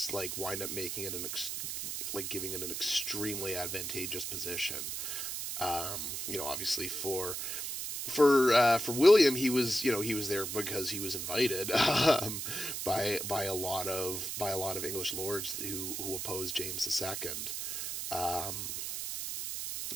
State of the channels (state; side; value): noise; right; hiss, 4 dB below the sound